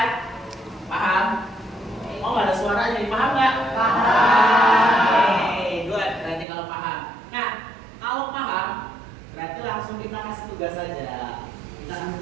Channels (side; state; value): left; drops out; at 6.5 s